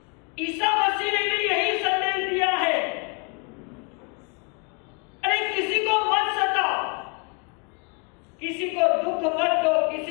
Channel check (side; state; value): right; quieter; 33.1 dB